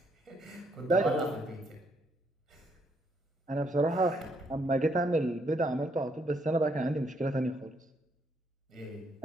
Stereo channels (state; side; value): normal; both; correlation 0.72